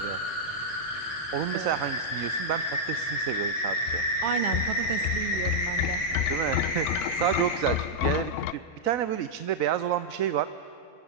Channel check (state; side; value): late; right; 4.0 ms